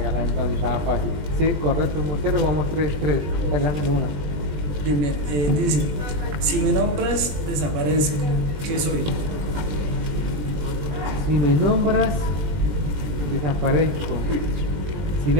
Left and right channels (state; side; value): late; left; 20 ms